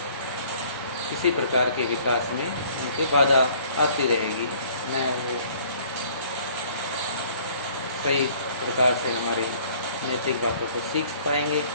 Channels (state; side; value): inverted; both; correlation -0.56